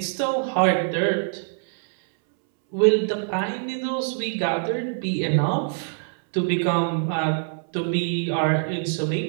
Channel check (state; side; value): silent; left; 63 dB below the other